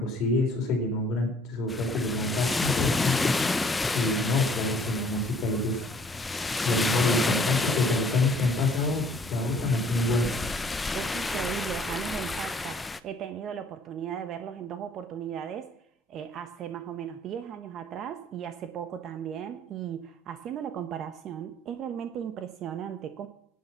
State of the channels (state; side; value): normal; both; correlation 0.58